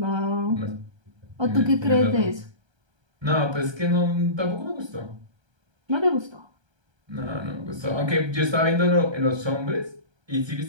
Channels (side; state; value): left; late; 1.3 ms